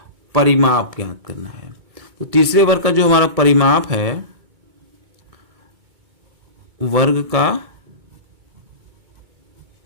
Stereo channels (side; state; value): left; late; 2.2 ms